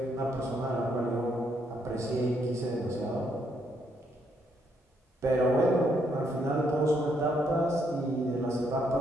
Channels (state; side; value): normal; both; correlation 0.74